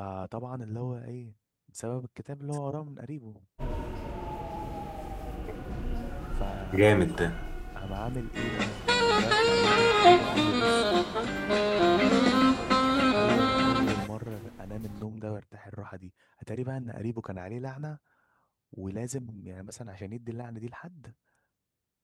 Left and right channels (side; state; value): both; identical; correlation 1.00